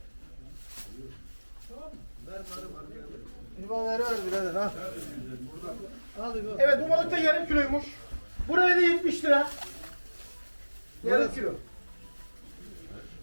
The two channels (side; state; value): both; inverted; correlation -1.00